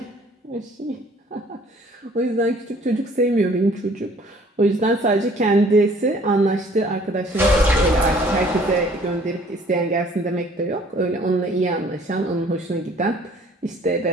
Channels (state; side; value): normal; both; correlation 0.56